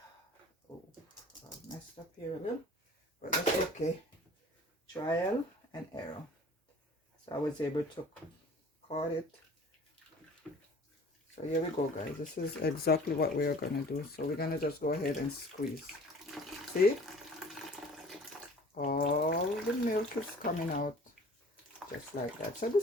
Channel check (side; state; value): both; normal; correlation 0.48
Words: I messed up here a little, but that's okay. Trial and error. So I was able to cut it. So here we go, guys. This is exactly what we are gonna do. So we're gonna just go ahead and squeeze. See, all the milk is coming out just like that. So